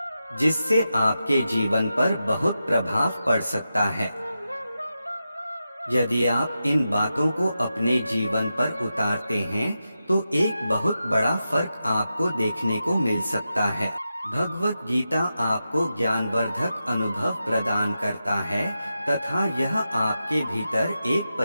जिससे आपके जीवन पर बहुत प्रभाव पड़ सकता है। यदि आप इन बातों को अपने जीवन पर उतारते हैं तो एक बहुत बड़ा फर्क आपको देखने को मिल सकता है। भगवत गीता आपको ज्ञानवर्धक अनुभव प्रदान करता है तथा यह आपके भीतर एक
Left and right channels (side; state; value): both; inverted; correlation -0.90